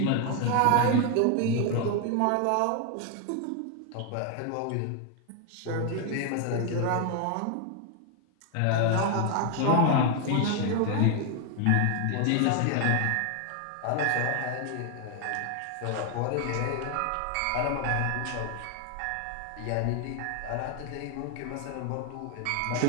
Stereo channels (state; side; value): different; both; correlation 0.00